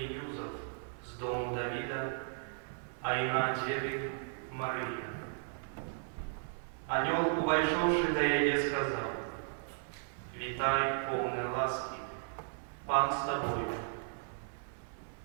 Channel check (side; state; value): left; silent; 54 dB below the other